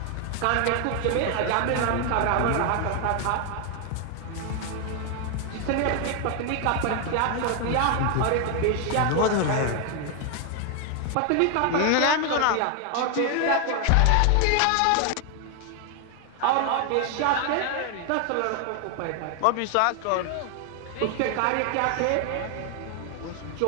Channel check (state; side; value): different; both; correlation 0.01